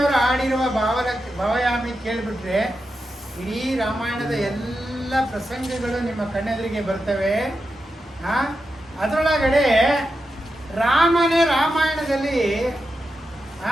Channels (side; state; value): both; normal; correlation 0.88